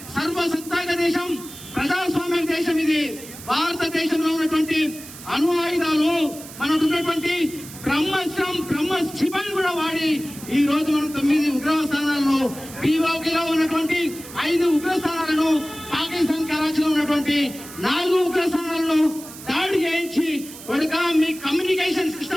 సర్వసత్తాక దేశం, ప్రజాస్వామ్య దేశం ఇది. భారతదేశంలో ఉన్నటువంటి అణు ఆయుధాలు, మనకు ఉన్నటువంటి బ్రహ్మ క్షిపణి కూడా వాడి ఈ రోజు మనం 9 ఉగ్రవాద స్థానాలను, పీఓకేలో ఉన్నటువంటి 5 ఉగ్ర స్థానాలను, పాకిస్తాన్ కరాచీలో ఉన్నటువంటి 4 ఉగ్ర స్థానాలను దాడి చేయించి మీ కమ్యూనికేషన్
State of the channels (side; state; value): right; noise; hiss, 15 dB below the sound